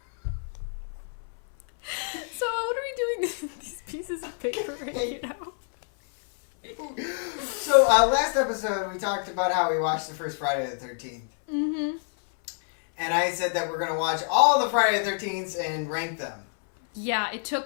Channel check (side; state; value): right; silent; 60 dB below the other